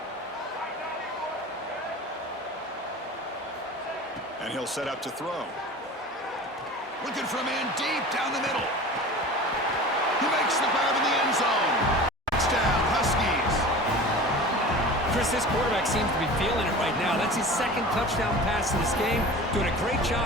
And he'll set up to throw. Looking for a man deep down the middle. He makes the grab in the end zone. Touchdown, Huskies. Chris, this quarterback seems to be feeling it right now. That's his second touchdown pass in this game. Doing a great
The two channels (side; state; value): both; normal; correlation 0.37